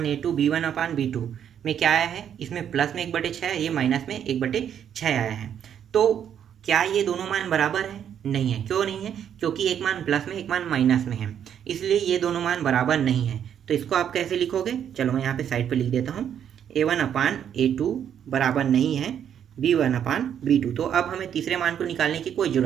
b1/b2 में क्या आया है, इसमें प्लस में 1/6 है, ये माइनस में 1/6 आया है। तो क्या ये दोनों मान बराबर है, नहीं है। क्यों नहीं है, क्योंकि एक मान प्लस में एक मान माइनस में है, इसलिए ये दोनों मान बराबर नहीं है। तो इसको आप कैसे लिखोगे, चलो मैं यहाँ पे साइड पे लिख देता हूँ, a1/a2 बराबर नहीं है b1/b2। तो अब हमें तीसरे मान को निकालने की कोई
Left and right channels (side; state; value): left; quieter; 9.0 dB